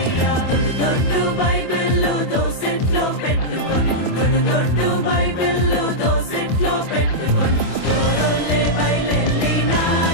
దొడ్డు బైబిల్లో దోసెట్లో పెట్టుకొని దొడ్డు బైబిల్లో దోసెట్లో పెట్టుకొని దూరంలే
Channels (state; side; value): late; right; 24 ms